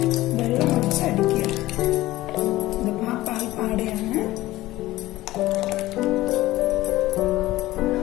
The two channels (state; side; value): quieter; right; 16.9 dB